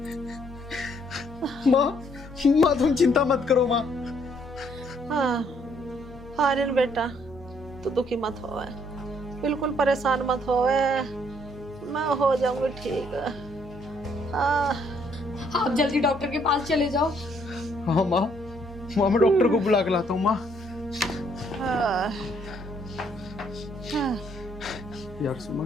माँ तुम चिंता मत करो माँ। हाँ, आर्यन बेटा, तू दुखी मत हो, बिल्कुल परेशान मत हो, मैं हो जाऊंगी ठीक। आप जल्दी डॉक्टर के पास चले जाओ। हाँ माँ, मैं डॉक्टर को बुला के लाता हूँ माँ। यार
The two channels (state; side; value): normal; both; correlation 0.67